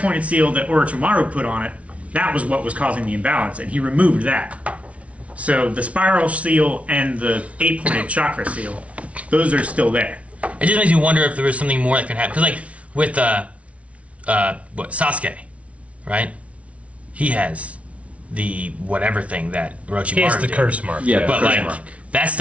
seal that Orochimaru put on it, that was what was causing the imbalance, and he removed that. So the spiral seal and the 8-pointed chakra seal, those are still there. It just makes me wonder if there was something more that could happen. Because like with Sasuke, right? He has the whatever thing that Orochimaru He has the did. curse mark. Yeah, But curse like mark. that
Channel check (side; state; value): left; late; 0.064 ms